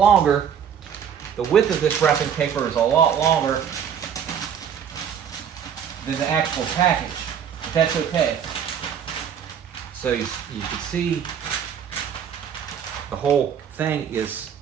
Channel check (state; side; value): quieter; left; 8.2 dB